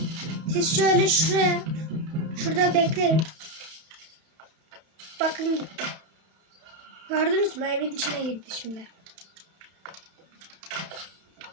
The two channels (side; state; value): left; late; 32 ms